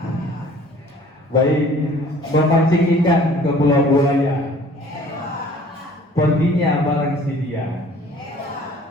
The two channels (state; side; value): normal; both; correlation 0.51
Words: Baik, memancing ikan ke pulau buaya. Perginya bareng si dia.